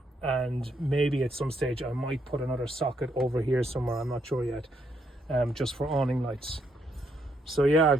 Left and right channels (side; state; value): both; normal; correlation 0.75